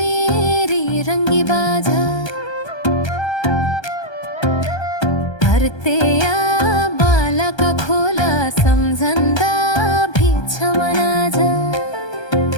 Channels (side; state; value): right; late; 1.2 ms